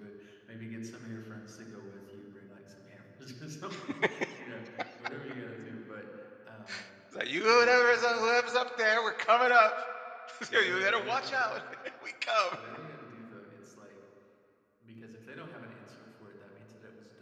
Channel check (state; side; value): identical; both; correlation 1.00